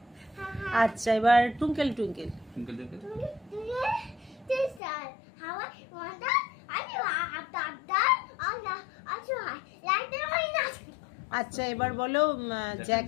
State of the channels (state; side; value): drops out; right; at 4.8 s